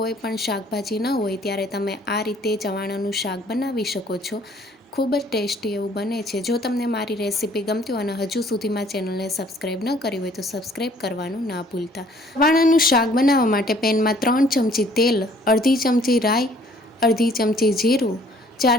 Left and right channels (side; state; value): both; normal; correlation 0.58